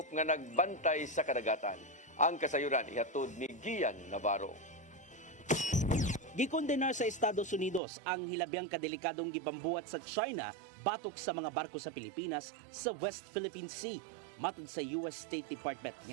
nga nagbantay sa kadagatan. Ang kasayuran ihatod ni Gian Navarro. Gikondenar sa Estados Unidos ang hilabiang kadelikadong gibambuhat sa China batok sa mga barko sa Pilipinas sa West Philippine Sea. Matod sa US State Department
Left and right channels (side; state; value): left; drops out; at 7.8 s